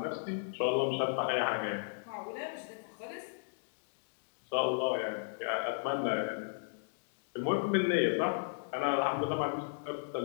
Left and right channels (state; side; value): silent; right; digital silence